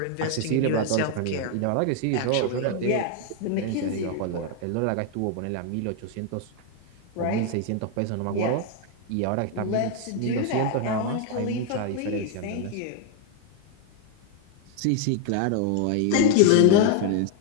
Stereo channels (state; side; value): different; both; correlation 0.00